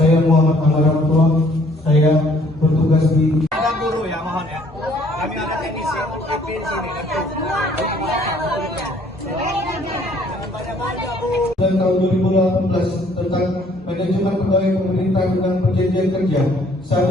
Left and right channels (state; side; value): normal; both; correlation 0.61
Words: Muhammad Amaramullah. Saya bertugas di Guru ya, mohon ya. Kami ada teknisi di sini. dan tahun 2018 tentang manajemen pegawai pemerintah dengan perjanjian kerja.